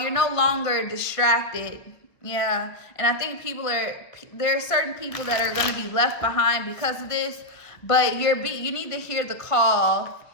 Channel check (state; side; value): late; right; 1.1 ms